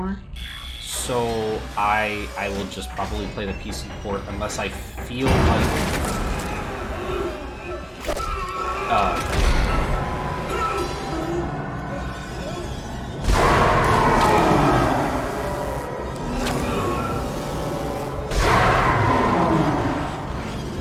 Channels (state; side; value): identical; both; correlation 1.00